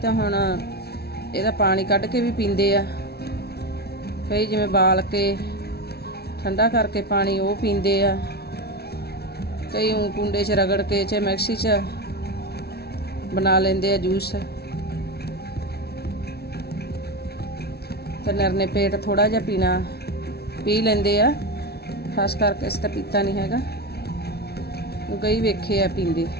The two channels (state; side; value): late; right; 0.46 ms